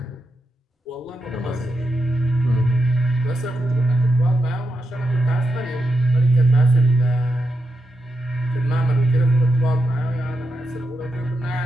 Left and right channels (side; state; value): both; normal; correlation 0.86